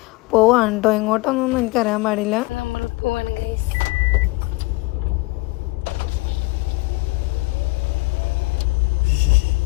പോവാണ് കേട്ടോ. എങ്ങോട്ടൊന്നും എനിക്കറിയാൻ പാടില്ല. നമ്മൾ പോവാണ് ഗൈസ്.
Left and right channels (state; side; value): quieter; right; 21.6 dB